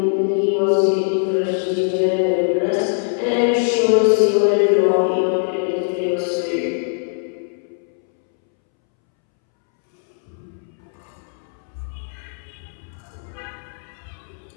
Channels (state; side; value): silent; right; 65 dB below the other